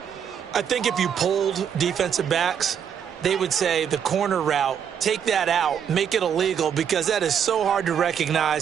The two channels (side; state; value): left; quieter; 8.2 dB